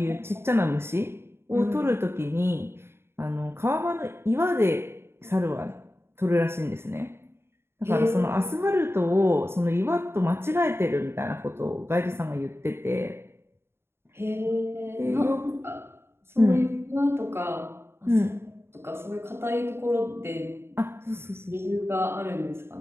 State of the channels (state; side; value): late; left; 0.12 ms